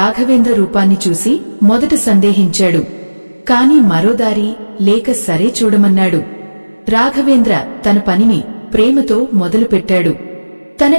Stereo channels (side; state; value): both; inverted; correlation -1.00